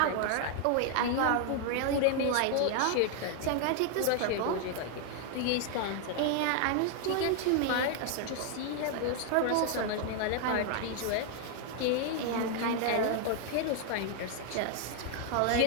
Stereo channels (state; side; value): different; both; correlation 0.00